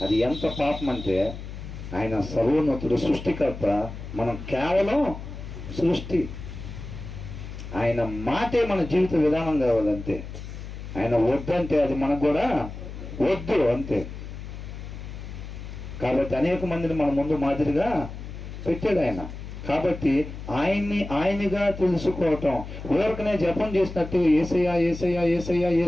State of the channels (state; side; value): noise; left; hum, 10 dB below the sound